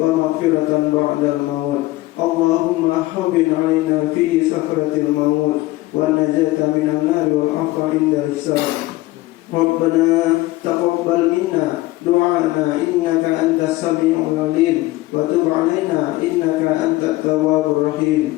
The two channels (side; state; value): right; quieter; 18.7 dB